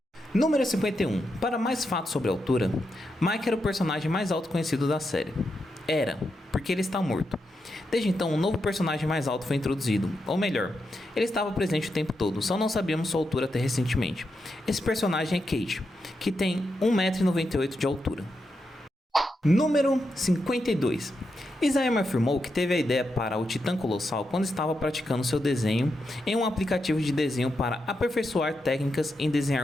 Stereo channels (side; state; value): both; normal; correlation 0.85